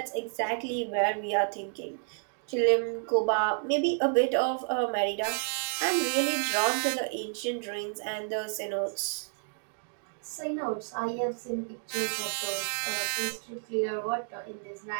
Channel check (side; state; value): left; silent; digital silence